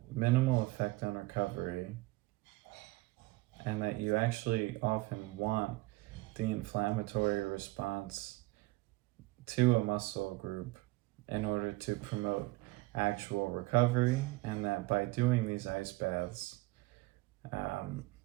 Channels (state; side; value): quieter; left; 21.3 dB